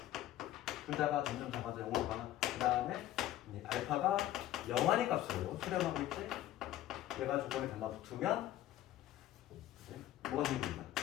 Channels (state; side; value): quieter; right; 13.7 dB